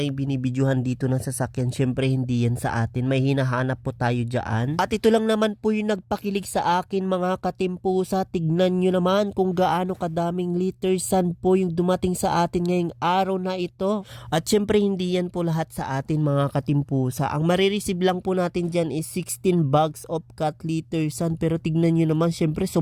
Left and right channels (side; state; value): both; identical; correlation 1.00